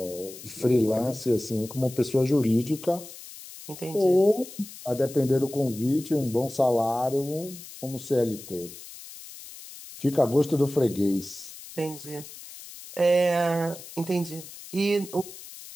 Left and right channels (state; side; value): noise; left; hiss, 15 dB below the sound